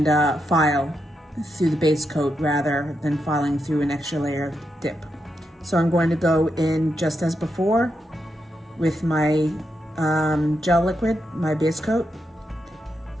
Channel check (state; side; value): normal; both; correlation 0.84